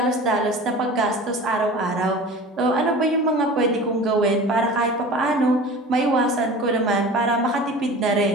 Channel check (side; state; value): both; normal; correlation 0.38